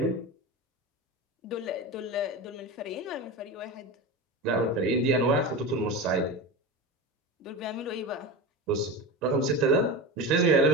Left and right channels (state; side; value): normal; both; correlation 0.25